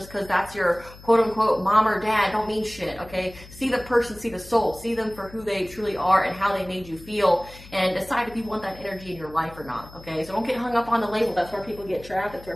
because that's your quote-unquote mom or dad don't mean shit, okay? See the person, see the soul, see them for who they truly are and how they made you feel, and decide if you want that energy in your life or not, okay? So don't get hung up on the label. That's where people get trapped. That's where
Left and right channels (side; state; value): left; noise; hum, 19 dB below the sound